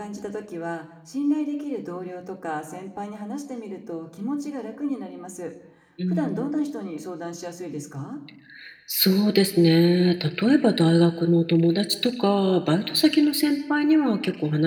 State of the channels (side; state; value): both; identical; correlation 1.00